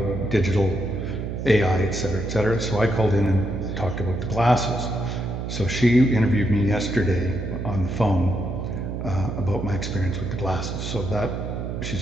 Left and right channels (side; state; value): right; noise; hum, 5 dB below the sound